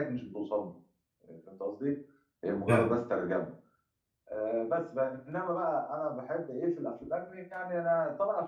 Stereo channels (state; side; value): identical; both; correlation 1.00